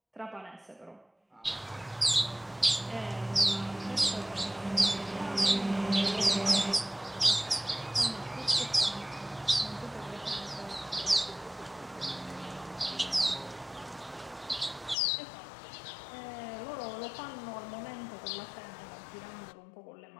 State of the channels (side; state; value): right; drops out; at 15.0 s